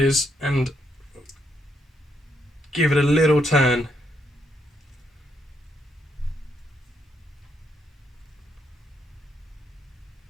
is and give it a little turn.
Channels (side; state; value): both; normal; correlation 0.76